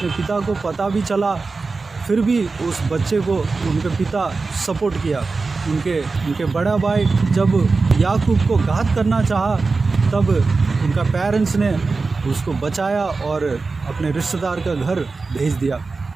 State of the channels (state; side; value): quieter; left; 4.0 dB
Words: पिता को पता भी चला, फिर भी उस बच्चे को उनके पिता सपोर्ट किया। उनके बड़ा भाई जब याकूब को घात करना चाहा, तब उनका पेरेंट्स ने उसको बचाया और अपने रिश्तेदार का घर भेज दिया।